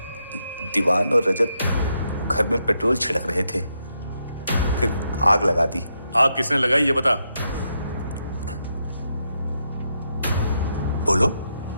दीवान और रजत घर में पेट्रोल छिड़क रहे थे, फिर आग लगा दी. आग किसने लगाई ये बता. बोलो,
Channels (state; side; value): inverted; both; correlation -0.81